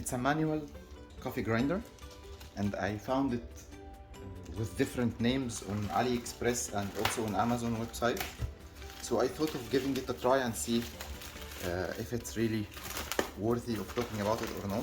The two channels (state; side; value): identical; both; correlation 1.00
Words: a manual coffee grinder and I found it with different names on Aliexpress and also on Amazon website. So I thought of giving it a try and see if it's really worthy of talking about it or